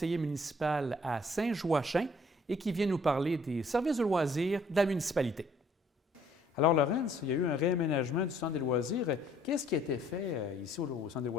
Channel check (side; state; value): both; normal; correlation 0.61